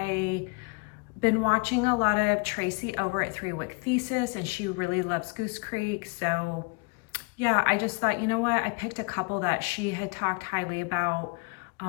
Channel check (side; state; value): right; quieter; 30.7 dB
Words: been watching a lot of Tracy over at 3 Wick Thesis, and she really loves Goose Creek. So yeah, I just thought, you know what? I picked a couple that she had talked highly about.